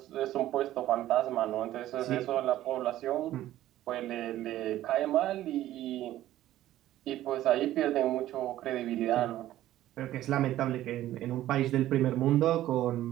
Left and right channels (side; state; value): left; quieter; 13.9 dB